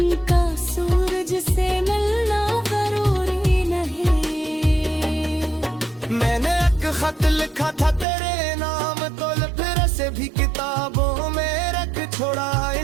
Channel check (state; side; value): drops out; left; at 8.1 s